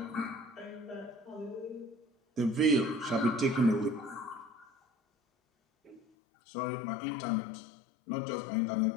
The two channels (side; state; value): right; drops out; at 6.0 s